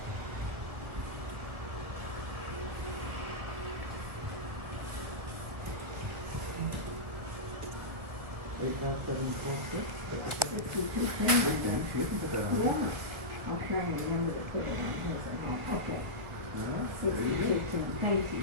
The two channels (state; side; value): late; left; 1.4 ms